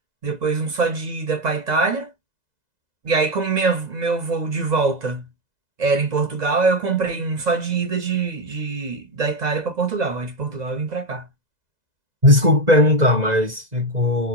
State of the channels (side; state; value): left; late; 2.0 ms